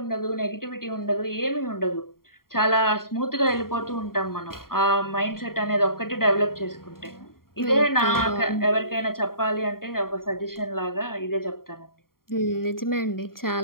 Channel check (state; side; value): late; right; 0.93 ms